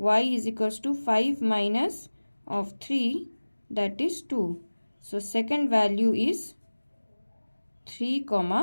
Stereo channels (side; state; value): both; inverted; correlation -1.00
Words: is equals to 5 minus of 3, that is 2. So second value is 3,